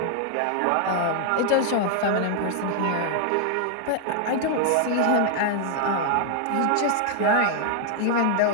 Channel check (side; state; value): both; different; correlation 0.00